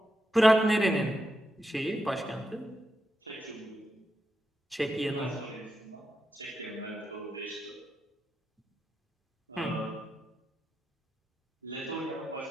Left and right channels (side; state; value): both; normal; correlation 0.86